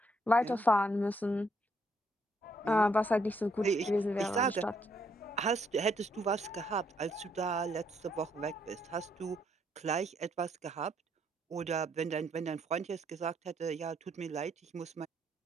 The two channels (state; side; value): normal; both; correlation 0.71